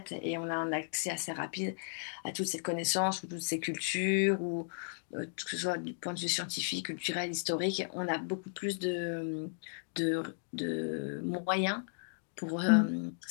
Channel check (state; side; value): silent; right; digital silence